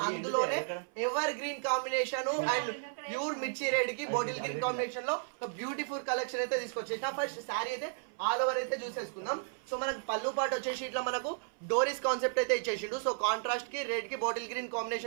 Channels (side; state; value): left; silent; 55 dB below the other